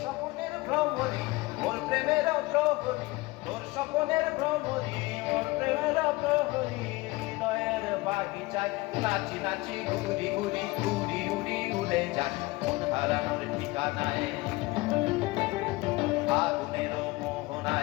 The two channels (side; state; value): right; quieter; 21.8 dB